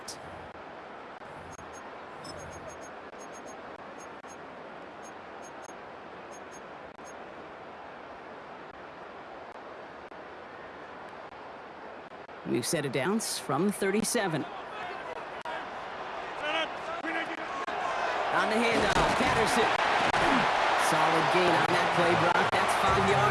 We've set it downs from 37. On the handoff, Patterson. Solid gain on that play, Brock. That's 5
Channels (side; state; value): both; identical; correlation 1.00